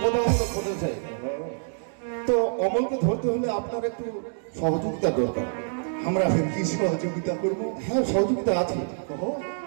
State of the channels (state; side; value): silent; left; digital silence